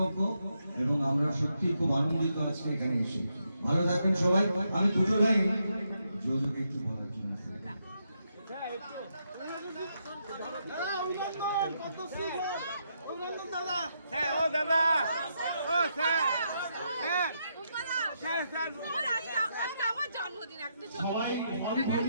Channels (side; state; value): both; inverted; correlation -0.80